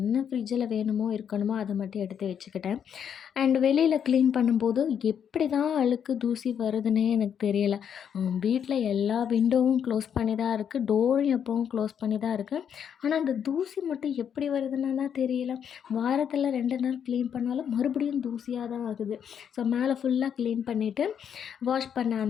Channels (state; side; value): quieter; right; 8.2 dB